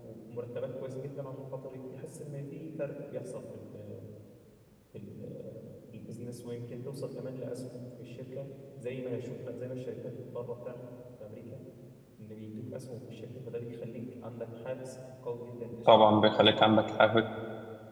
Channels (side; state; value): both; identical; correlation 1.00